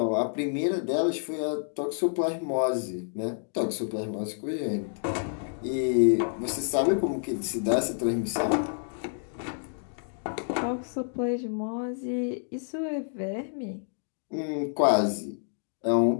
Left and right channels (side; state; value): right; silent; digital silence